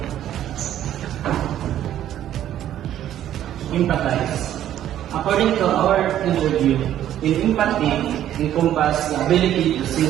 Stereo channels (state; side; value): quieter; left; 11.6 dB